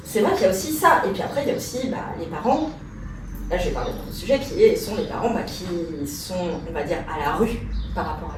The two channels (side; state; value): both; identical; correlation 1.00